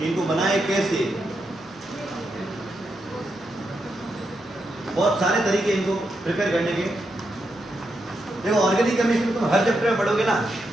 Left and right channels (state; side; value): normal; both; correlation 0.83